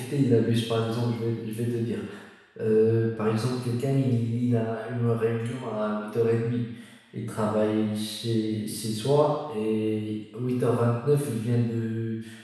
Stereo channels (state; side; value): identical; both; correlation 1.00